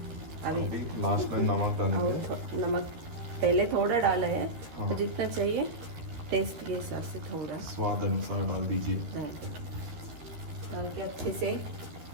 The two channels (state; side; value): late; left; 13 ms